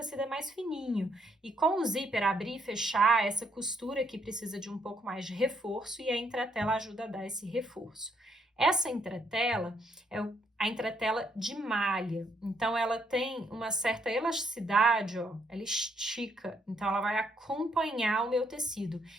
é mais fininho. E com o zíper abrir e fechar, essa costura aqui precisa de um pouco mais de reforço e a entretela ajuda a dar esse reforço. Essa entretela é a entretela de malha. Então, ela tem uma certa elasticidade, ó, ela estica. Então, ela vai acompanhar o meu tecido.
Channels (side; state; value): both; normal; correlation 0.72